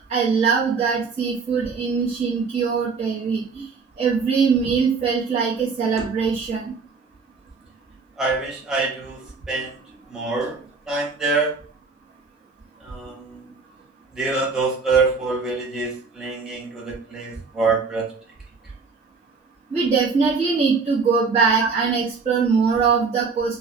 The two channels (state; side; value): quieter; left; 4.8 dB